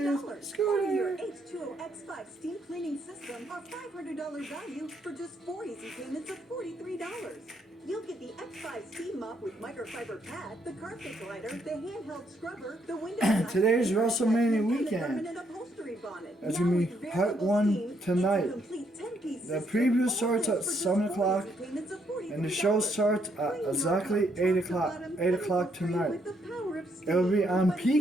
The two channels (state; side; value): normal; both; correlation 0.73